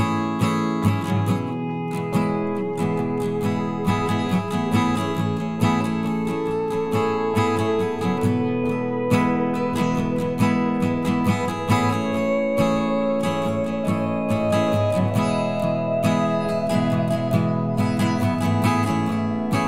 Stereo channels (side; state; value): both; identical; correlation 1.00